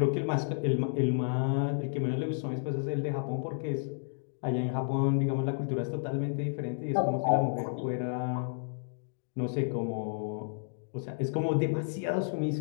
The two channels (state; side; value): silent; right; digital silence